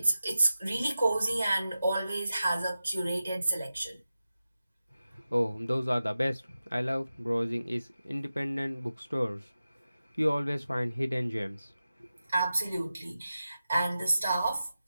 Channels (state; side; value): inverted; both; correlation -0.93